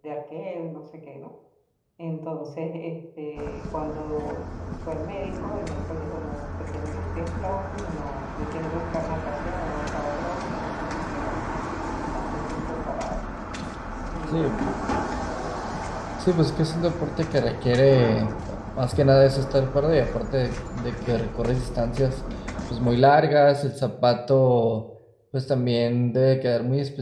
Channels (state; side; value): identical; both; correlation 1.00